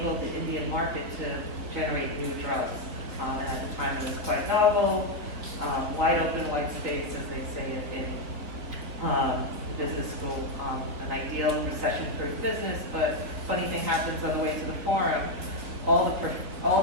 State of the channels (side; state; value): left; late; 4.2 ms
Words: the Indian market to generate new drugs. And at the time, it was quite novel, wide open white space, as they say it in business school, an ideal recession-proof business, but funny thing happens on the way to the forum. All